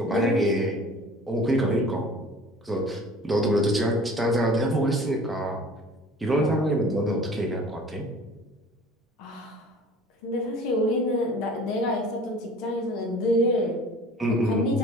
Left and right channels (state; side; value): normal; both; correlation 0.46